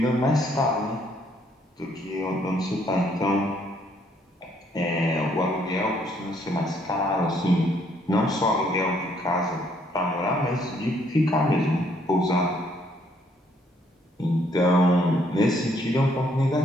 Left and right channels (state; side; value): normal; both; correlation 0.68